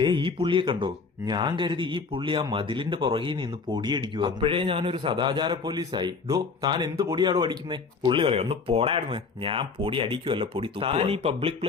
ഈ പുള്ളിയെ കണ്ടോ? ഞാൻ കരുതി ഈ പുള്ളി ആ മതിലിന്റെ പുറകിൽ നിന്ന് പൊടിയടിക്കുക. അപ്പോഴേ ഞാനൊരു സദാചാര പോലീസായി. ഡോ, താൻ എന്ത് പൊടിയാടോ അടിക്കുന്നേ? പുള്ളി പറയാം, ഒന്ന് പോടായിരുന്നു. ഞാൻ പൊടി അടിക്കുവല്ല, പൊടി താൻ ഈ പബ്ലിക്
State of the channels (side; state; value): right; quieter; 4.7 dB